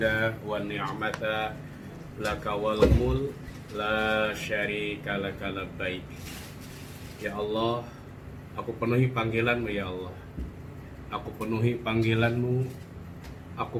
wan ni'mata laka wal mulk la syarika laka labbaik. Ya Allah, aku penuhi panggilan-Mu ya Allah. Aku penuhi panggilan-Mu,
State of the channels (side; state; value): both; identical; correlation 1.00